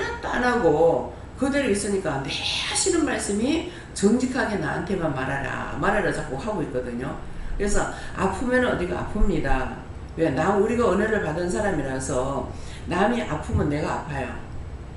안 하고 그대로 있으니까 내 하시는 말씀이 정직하게 나한테만 말하라 자꾸 하고 있거든요. 그래서 아프면 어디가 아픕니다. 왜? 우리가 은혜를 받은 사람이라서 남이 아프면 내가 아파요.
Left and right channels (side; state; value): both; identical; correlation 1.00